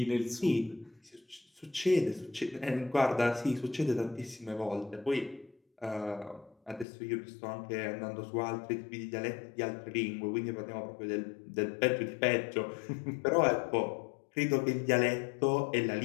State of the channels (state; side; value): drops out; right; at 6.9 s